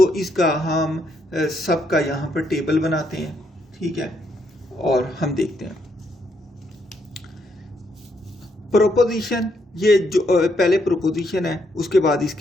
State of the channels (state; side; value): normal; both; correlation 0.75